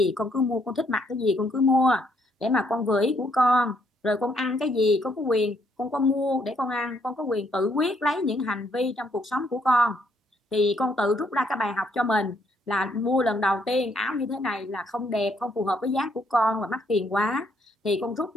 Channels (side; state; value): both; normal; correlation 0.71